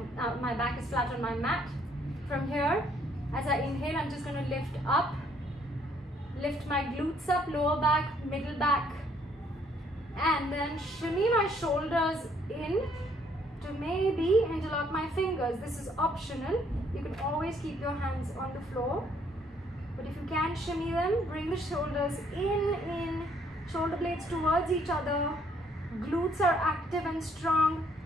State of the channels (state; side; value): normal; both; correlation 0.66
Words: back is flat on my mat. From here, as I inhale, I'm just going to lift up. Lift my glutes up, lower back, middle back. And then shimmy my shoulders in to maybe interlock my fingers. This is optional. You can always keep your hands on the floor. But if you can shimmy them, bring the shoulders in, shoulder blades towards each other. Glutes are active and strong.